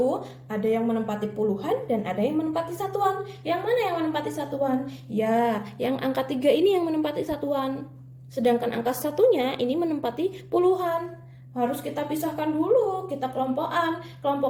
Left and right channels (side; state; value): both; identical; correlation 1.00